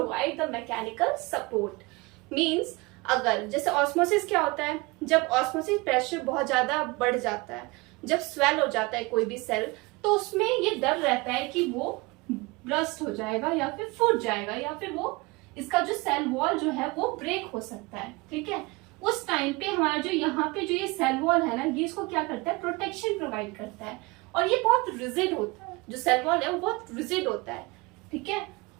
the mechanical support. Means अगर जैसे ऑस्मोसिस क्या होता है, जब ऑस्मोसिस प्रेशर बहुत ज्यादा बढ़ जाता है, जब स्वेल हो जाता है कोई भी सेल, तो उसमें ये डर रहता है कि वो ब्रस्ट हो जाएगा या फिर फूट जाएगा या फिर वो इसका जो सेल वॉल जो है वो ब्रेक हो सकता है. ठीक है. उस टाइम पे हमारा जो यहाँ पे जो ये सेल वॉल है ना, ये इसको क्या करता है, प्रोटेक्शन प्रोवाइड करता है. और ये बहुत रिजिड होता है. जो सेल वॉल है वो बहुत रिजिड होता है. ठीक है.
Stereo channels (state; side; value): quieter; left; 24.9 dB